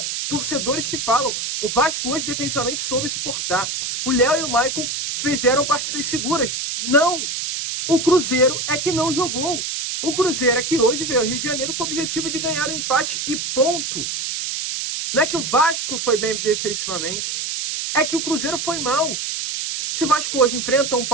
torcedores que falam, o Vasco hoje defensivamente soube suportar. O Léo e o Maicon fizeram partidas seguras. Não! O Cruzeiro é que não jogou. O Cruzeiro é que hoje veio ao Rio de Janeiro com o objetivo de ganhar o empate e ponto. Não é que o Vasco foi bem defensivamente. É que o Cruzeiro foi mal. Se o Vasco hoje enfrenta um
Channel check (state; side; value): noise; right; hiss, 3 dB below the sound